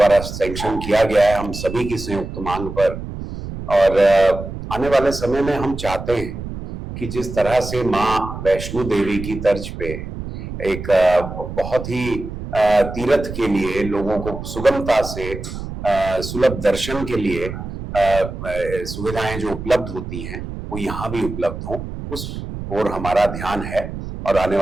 सैंक्शन किया गया है हम सभी की संयुक्त मांग पर। और आने वाले समय में हम चाहते हैं कि जिस तरह से माँ वैष्णो देवी की तर्ज पे एक बहुत ही तीर्थ के लिए लोगों को सुगमता से सुलभ दर्शन के लिए सुविधाएं जो उपलब्ध होती हैं वो यहाँ भी उपलब्ध हों, उस ओर हमारा ध्यान है और आने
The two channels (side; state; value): right; noise; rumble, 9 dB below the sound